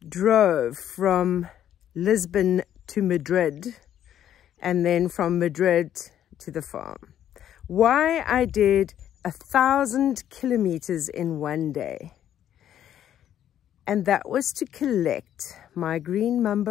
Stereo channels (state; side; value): quieter; right; 10.7 dB